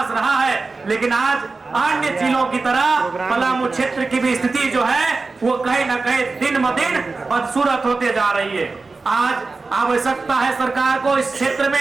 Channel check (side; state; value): left; quieter; 3.9 dB